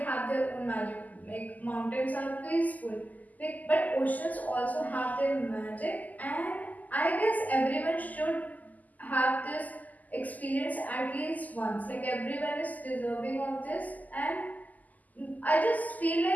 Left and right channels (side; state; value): right; late; 0.080 ms